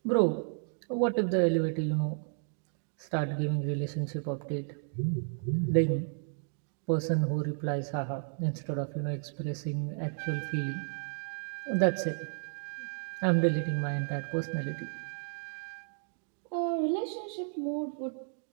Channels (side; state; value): left; silent; digital silence